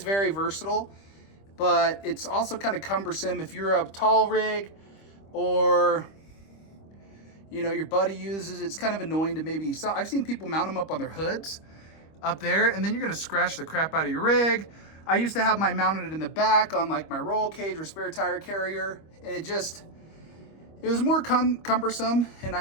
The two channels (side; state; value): right; late; 25 ms